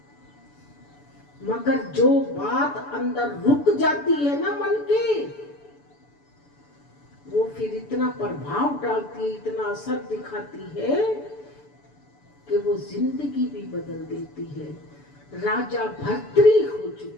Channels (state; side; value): late; right; 6.9 ms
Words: मगर जो बात अंदर रुक जाती है ना मन के, वो फिर इतना प्रभाव डालती है, इतना असर दिखाती है कि वो जिंदगी भी बदल देती है। राजा भर्तृ हो